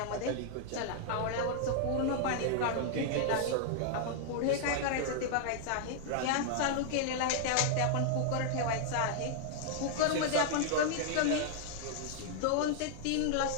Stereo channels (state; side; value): different; both; correlation -0.01